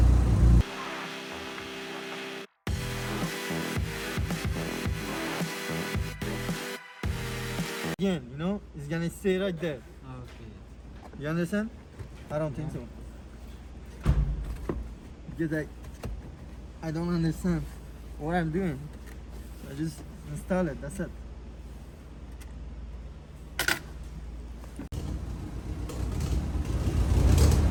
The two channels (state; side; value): identical; both; correlation 1.00